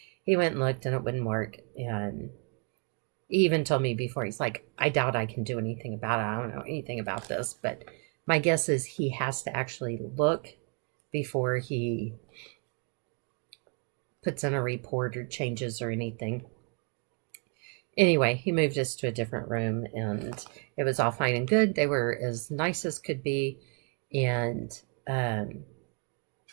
he went and looked and it wouldn't work. And he even told me before, he's like, I doubt I can do anything about it. I don't know anything about this. But my guess is he has to actually look before he puts in a report or changes or anything. Anyway, he moved us to a different room and it was all fine and good. They were as nice as could be. And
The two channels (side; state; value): left; quieter; 37.2 dB